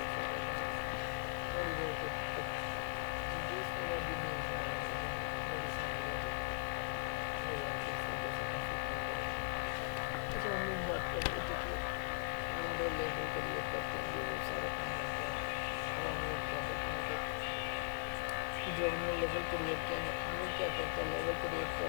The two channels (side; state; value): right; silent; 51 dB below the other